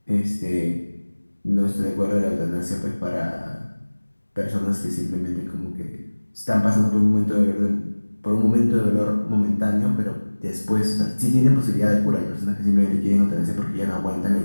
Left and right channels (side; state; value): both; inverted; correlation -1.00